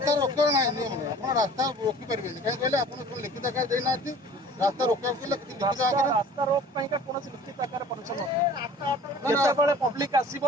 ରୋକିବାର ନାହିଁ ନିୟମ ନାହିଁ ଆପଣ ରାସ୍ତା ରୋକି ପାରିବେନି କାହିଁ କହିଲେ ଆପଣ ଲିଖିତ ଆକାର ଦେଇନାହାନ୍ତି रास्ता रोकवा रास्ता रोक कौन लिखित आकार परमिशन जिते पब्लिक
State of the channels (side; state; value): both; normal; correlation 0.47